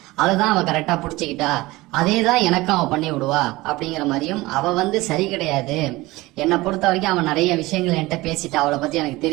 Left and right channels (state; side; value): quieter; left; 20.1 dB